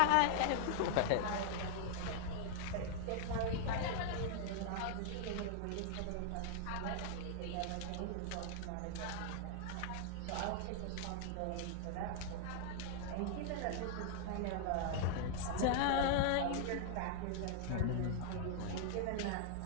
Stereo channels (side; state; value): both; different; correlation -0.01